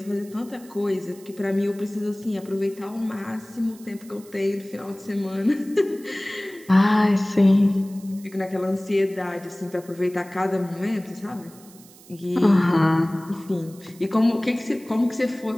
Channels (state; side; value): noise; right; hiss, 23 dB below the sound